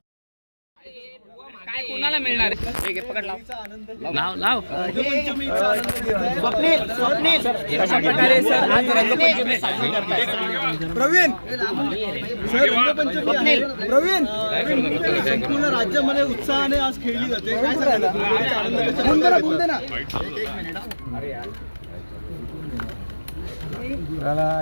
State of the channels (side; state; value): both; inverted; correlation -1.00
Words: काय कोणाला मिळणार आहे? पकड लाव लाव. स्वप्नील कशा प्रकारे सर आज रंगपंचमी साजरी करताय? प्रवीण सर रंगपंचमी प्रवीण संपूर्ण राज्यामध्ये उत्साहाने आज खेळली जाते. काय सांगाल? बोल दे ना.